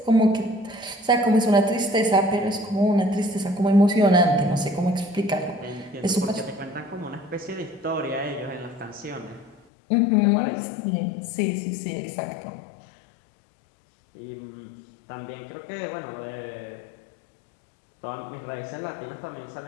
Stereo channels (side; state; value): right; drops out; at 9.6 s